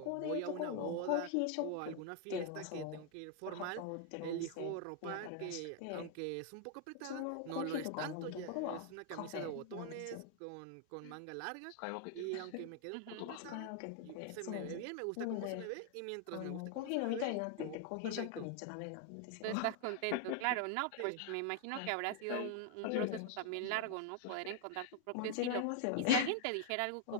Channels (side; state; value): both; different; correlation 0.00